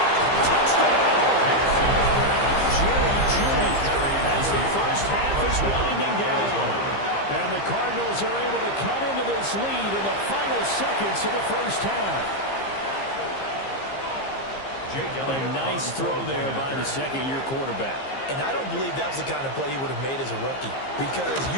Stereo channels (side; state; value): right; late; 15 ms